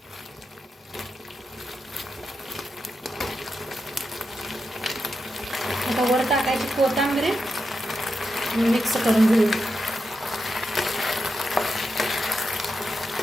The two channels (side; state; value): both; normal; correlation 0.87